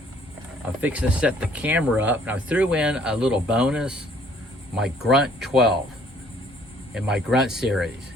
I'm fixing to set the camera up, and I threw in a little bonus, my Grunt 12 in my Grunt series.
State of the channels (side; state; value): both; normal; correlation 0.60